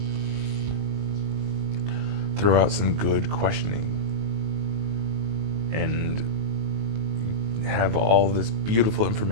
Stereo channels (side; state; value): left; late; 19 ms